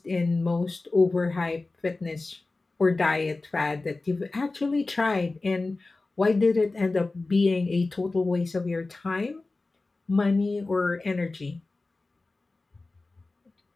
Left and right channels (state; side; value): quieter; right; 3.3 dB